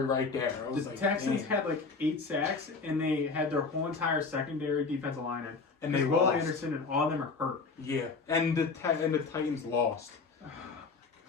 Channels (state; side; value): quieter; right; 4.4 dB